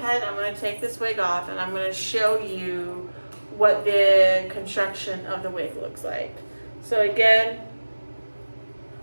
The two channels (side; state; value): both; inverted; correlation -1.00